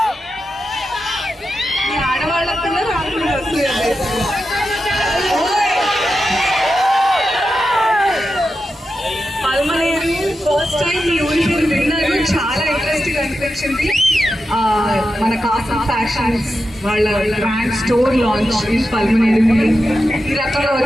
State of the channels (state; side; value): normal; both; correlation 0.89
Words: ఫస్ట్ టైం ఈ ఊరి పేరు విన్నాను, చాలా ఇంట్రెస్టింగ్ అనిపించింది. మన కాసం ఫ్యాషన్స్ వాళ్ళ brand store launch in Palamaner. ఈ రకంగా